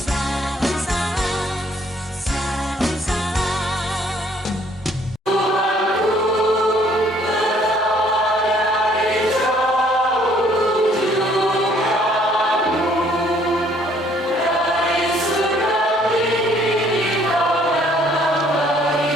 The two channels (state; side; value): normal; both; correlation 0.62